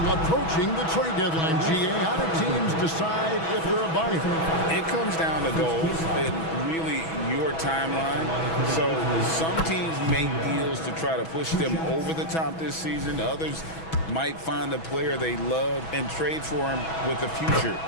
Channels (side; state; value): right; late; 6.1 ms